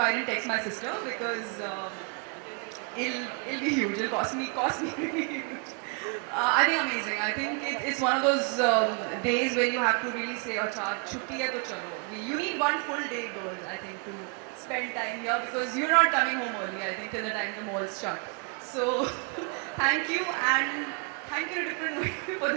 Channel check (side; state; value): left; quieter; 37.8 dB